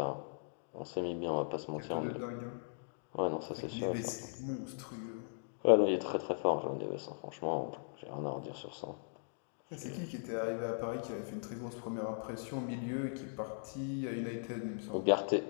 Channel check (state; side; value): silent; right; digital silence